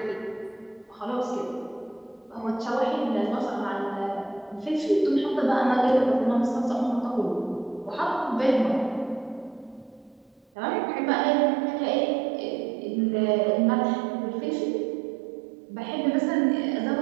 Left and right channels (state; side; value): drops out; left; at 10.5 s